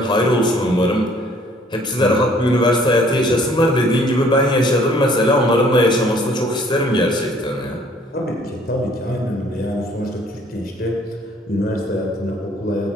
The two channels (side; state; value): both; normal; correlation 0.59